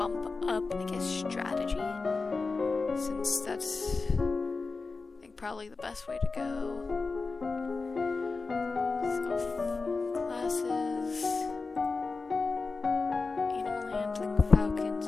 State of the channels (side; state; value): right; quieter; 4.1 dB